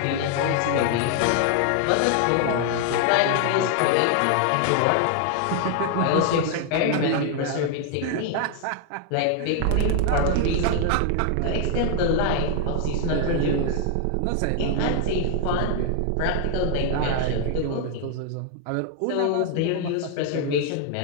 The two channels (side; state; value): both; different; correlation 0.00